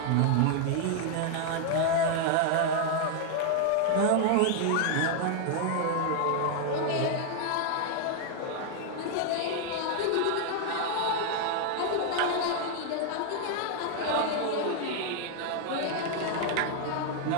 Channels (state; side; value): different; both; correlation 0.00